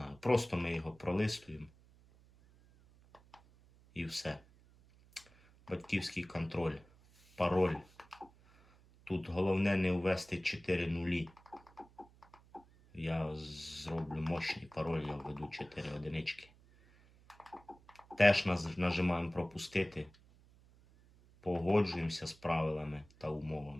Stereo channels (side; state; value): right; noise; hum, 27 dB below the sound